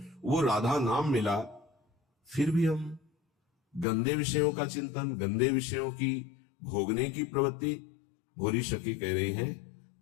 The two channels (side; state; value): right; drops out; at 3.9 s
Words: वो राधा नाम मिला। फिर भी हम गंदे विषयों का चिंतन, गंदे विषयों की भोगने की प्रवृत्ति। भोरी सखी कह रही है,